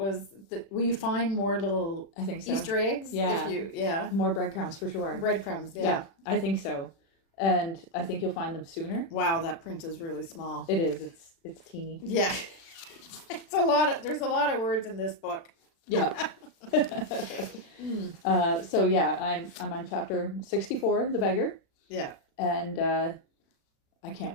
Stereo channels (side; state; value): right; late; 36 ms